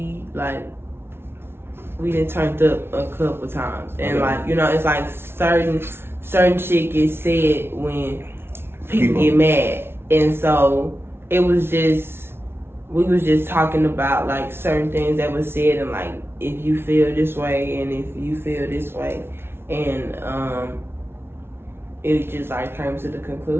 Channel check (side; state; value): left; late; 0.12 ms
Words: we done turned up a couple times, and like it's like certain shit gets said when people get mad, and so it was just we was just talking about like certain things that was said, and like if you feel this way and if you feel this way, and it just like came to the